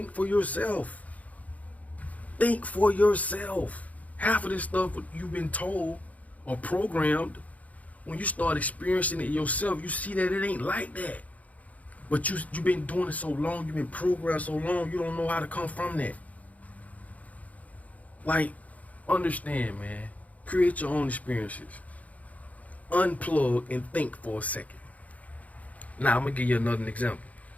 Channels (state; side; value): late; right; 0.071 ms